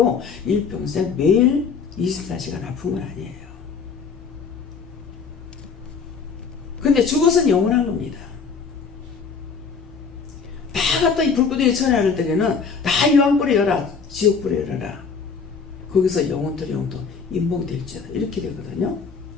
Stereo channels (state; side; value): quieter; right; 5.5 dB